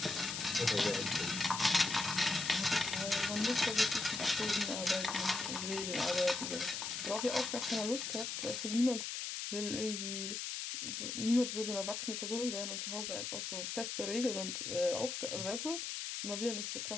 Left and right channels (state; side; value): noise; left; hiss, 4 dB below the sound